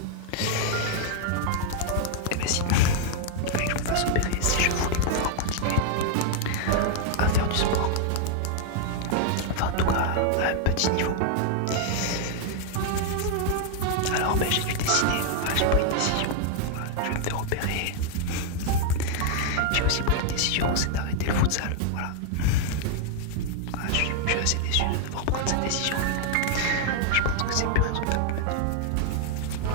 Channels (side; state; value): both; different; correlation 0.00